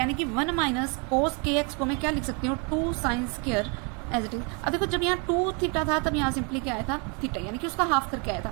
कि 1 माइनस कोस के एक्स को मैं क्या लिख सकती हूँ, 2 sine square as it is. अब देखो जब यहाँ 2 थीटा था तब यहाँ सिंपली क्या आया था, थीटा, यानी कि उसका हाफ करके आया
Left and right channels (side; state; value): left; quieter; 34.2 dB